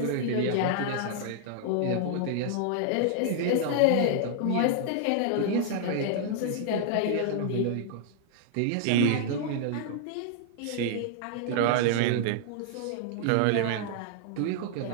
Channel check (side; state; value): both; different; correlation -0.01